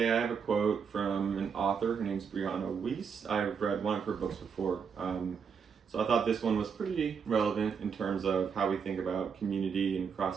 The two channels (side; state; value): left; quieter; 6.4 dB